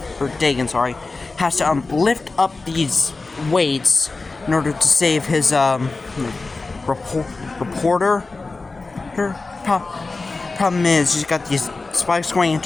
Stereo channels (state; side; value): quieter; right; 3.7 dB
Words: has to lift up these weights in order to save his reporter. Her problem is she's got these spikes going